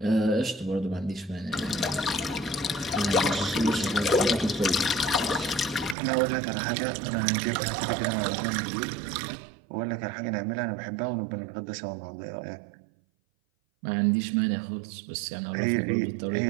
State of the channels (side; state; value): left; drops out; at 6.0 s